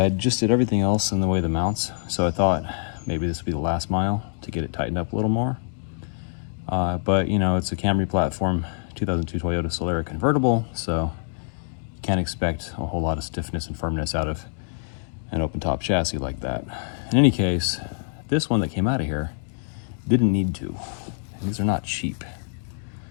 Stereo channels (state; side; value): silent; right; digital silence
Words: just did everything else in the way of the mounts, so I thought maybe this would be the last mile to get it tightened up a little more. But you know, it's a Camry platform, 2002 Toyota Solara convertible, so you can't expect a whole lot of stiffness and firmness out of an open top chassis like that. In any case, this one that came out of here didn't need to. And these are not cheap.